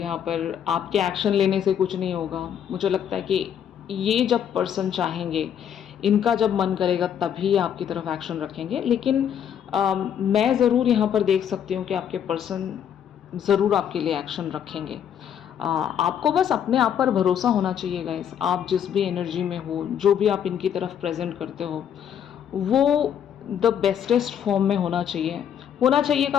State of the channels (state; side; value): quieter; right; 9.0 dB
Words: पर आपके एक्शन लेने से कुछ नहीं होगा। मुझे लगता है कि ये जब पर्सन चाहेंगे, इनका जब मन करेगा तभी आपकी तरफ एक्शन रखेंगे। लेकिन मैं ज़रूर यहाँ पर देख सकती हूँ कि आपके पर्सन ज़रूर आपके लिए एक्शन रखेंगे। आपको बस अपने आप पर भरोसा होना चाहिए गाइस। आप जिस भी एनर्जी में हो, जो भी आप इनकी तरफ प्रेजेंट करते हो, वो द बेस्टेस्ट फॉर्म में होना चाहिए। होना चाहिए